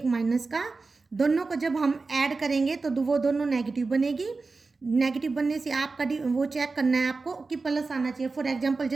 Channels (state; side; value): quieter; left; 4.0 dB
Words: माइनस का, दोनों को जब हम ऐड करेंगे तो वो दोनों नेगेटिव बनेगी। नेगेटिव बनने से आपका वो चेक करना है आपको कि प्लस आना चाहिए। फॉर एग्जांपल